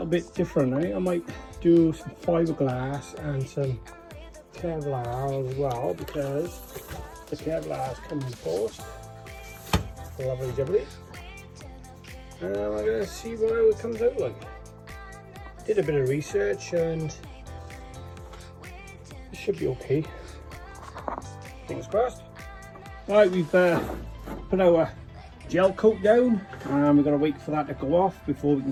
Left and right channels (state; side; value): identical; both; correlation 1.00